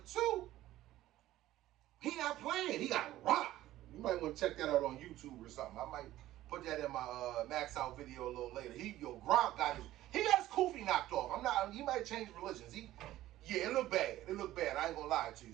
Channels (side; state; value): left; quieter; 14.8 dB